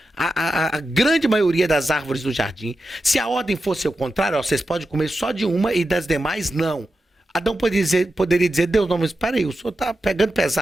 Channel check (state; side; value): normal; both; correlation 0.90